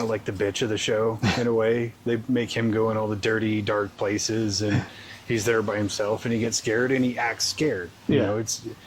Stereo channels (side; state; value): both; identical; correlation 1.00